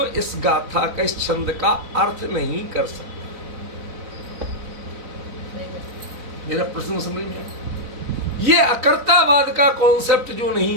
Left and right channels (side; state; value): left; late; 4.0 ms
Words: इस गाथा का, इस छंद का अर्थ नहीं कर सकता। मेरा प्रश्न समझ में आया? ये अकर्तावाद का कॉन्सेप्ट जो